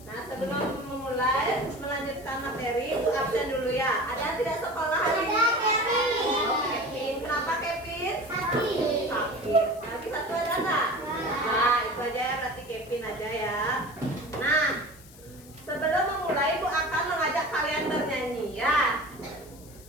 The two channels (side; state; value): left; noise; hiss, 22 dB below the sound